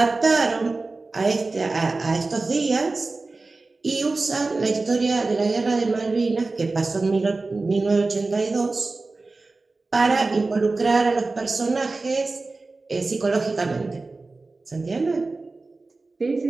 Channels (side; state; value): left; quieter; 3.5 dB